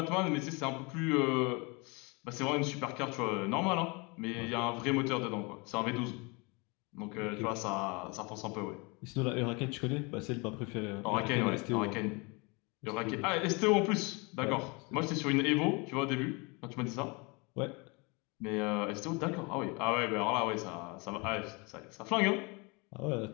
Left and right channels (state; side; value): quieter; right; 28.8 dB